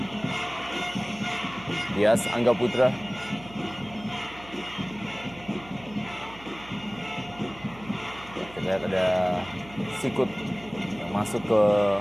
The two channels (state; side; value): noise; right; hum, 19 dB below the sound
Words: Dias Angga Putra. Kita lihat ada sikut yang masuk ke